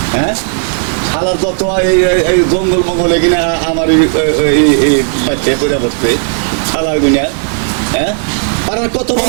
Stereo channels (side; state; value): left; silent; 73 dB below the other